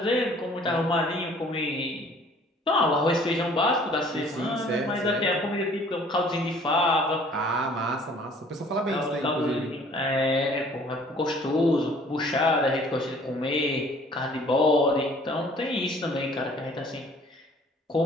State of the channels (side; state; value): both; normal; correlation 0.54